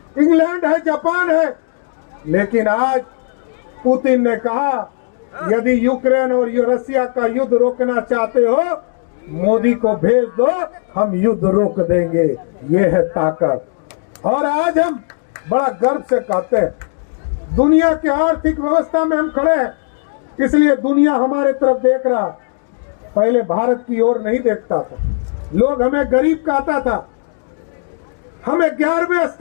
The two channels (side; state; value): right; silent; digital silence